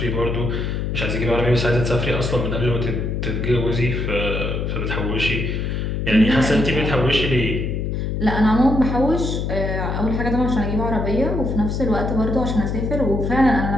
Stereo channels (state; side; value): noise; left; hum, 1 dB below the sound